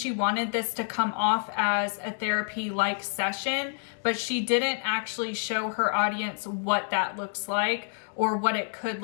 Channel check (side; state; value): right; silent; 59 dB below the other